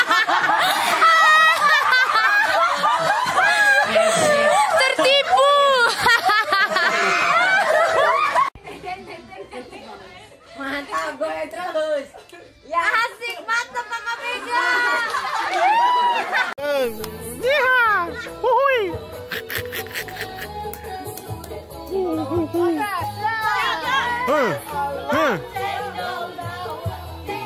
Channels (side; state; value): both; identical; correlation 1.00